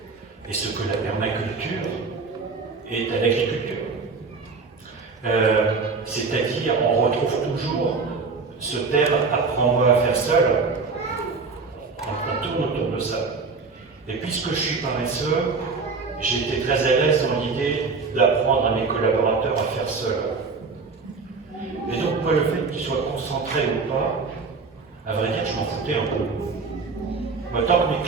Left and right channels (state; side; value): quieter; left; 4.4 dB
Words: et ce que la permaculture est à l'agriculture. C'est-à-dire, on retrouve toujours Ce terme « apprends-moi à faire seul », on tourne autour de ça. Et puisque je suis paresseux, j'ai été très à l'aise dans l'idée d'apprendre à mes collaborateurs à faire seul. Et donc, moi, le fait qu'ils soient concentrés ou pas, à vrai dire, je m'en foutais un peu. Moi, tant que mes